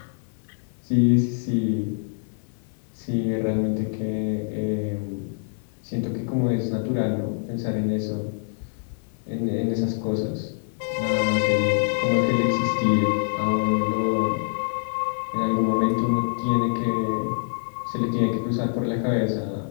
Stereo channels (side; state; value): right; silent; 57 dB below the other